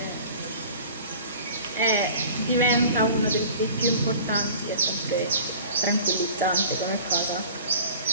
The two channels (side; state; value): both; inverted; correlation -0.43